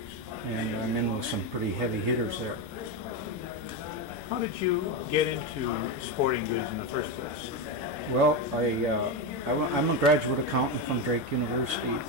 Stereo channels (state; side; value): normal; both; correlation 0.12